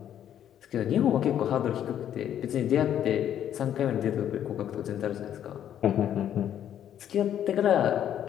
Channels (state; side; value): quieter; right; 10.3 dB